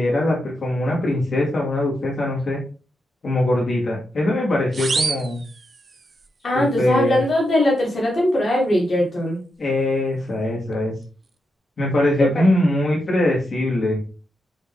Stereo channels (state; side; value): normal; both; correlation 0.85